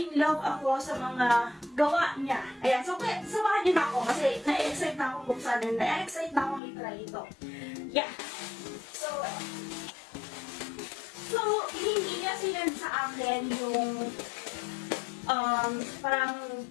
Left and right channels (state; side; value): drops out; right; at 6.6 s